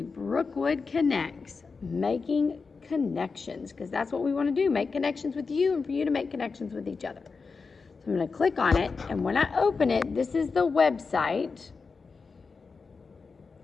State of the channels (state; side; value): quieter; right; 4.7 dB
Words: Brookwood Connects, making connections, because that's what we want to do, make connections with you and for you to make connections with each other. So I'm going to click on it, and when I open it, this is the website